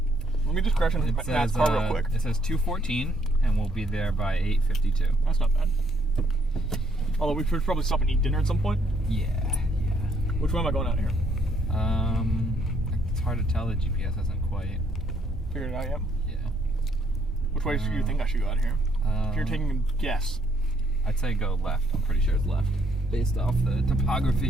Let me just crash into It Matt's says car real quick. It says 2:14, and we'll be there by 8:52. That's not bad. Although we should probably stop and eat dinner at some point. Yeah. Which way am I going out here? It's hard to tell. The GPS hasn't quite. Figured it out yet. Yeah. Which way do you think I should go out of here? If you're taking a guess. I'd say go left. I'm pretty sure it's left, based off the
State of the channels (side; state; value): both; normal; correlation 0.70